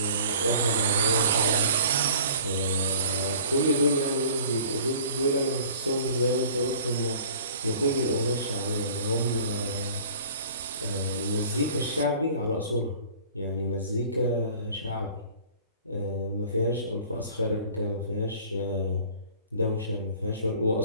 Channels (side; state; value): both; inverted; correlation -0.48